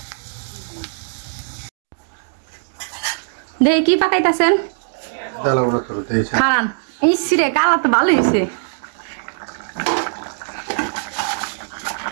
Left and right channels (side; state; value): left; silent; digital silence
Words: দেখি কি পাকাইতেছেন। খারান ইসরে কালা তো ভালো হয়েছে